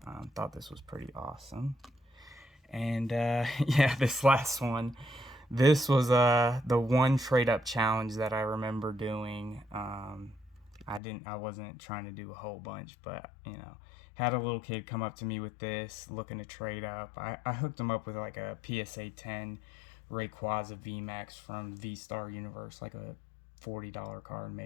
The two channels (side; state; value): right; drops out; at 11.0 s